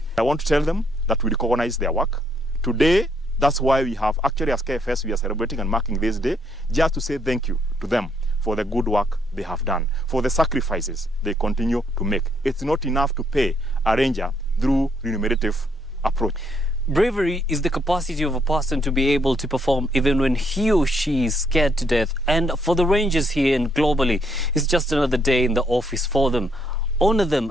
I want to tell them that we recognize their work. Today, that's why we have actually as KFS, we are celebrating and marking this day, just to say thank you to them for the good work they have done, for the sacrifices they continue to make. It's not enough to pay a ranger through remunerative approach. Bravery is the capacity of a person to be able to perform even when he or she is scared to death. And for the rangers here and globally, it's just another day in the office for them. Honor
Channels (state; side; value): normal; both; correlation 0.72